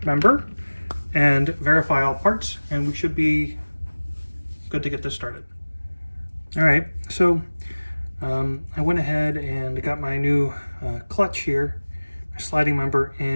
member and verify all parts, and we should be good to get this started. All right, so I went ahead and got my new clutch here, sliding member,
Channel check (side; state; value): both; inverted; correlation -1.00